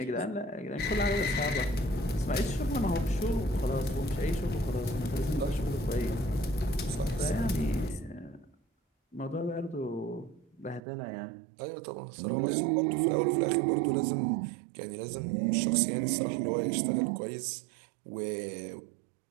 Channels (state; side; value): drops out; left; at 10.8 s